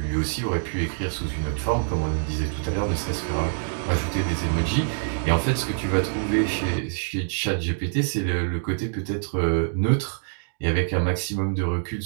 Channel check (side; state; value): left; silent; digital silence